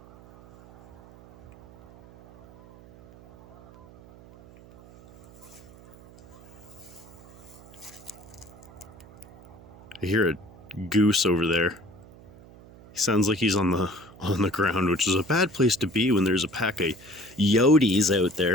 I hear a goose over there. He sounds like he's on the ground, which is a bad place to be when there's a pack of coyotes out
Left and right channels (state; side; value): noise; right; hum, 22 dB below the sound